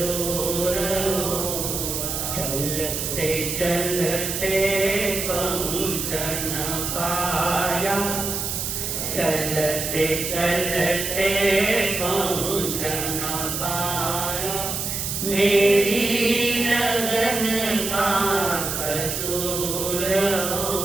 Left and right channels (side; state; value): right; noise; hiss, 3 dB below the sound